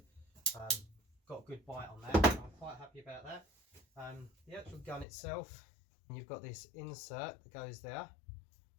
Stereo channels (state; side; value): drops out; right; at 5.1 s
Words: Got a good bite on that, so I'm quite happy about that. The actual gun itself, you've got this insert that goes there,